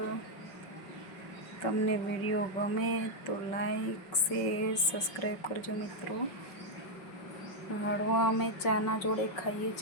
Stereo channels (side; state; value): right; late; 5.4 ms